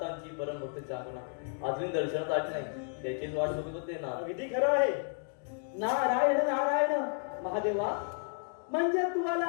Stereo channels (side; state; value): right; silent; 56 dB below the other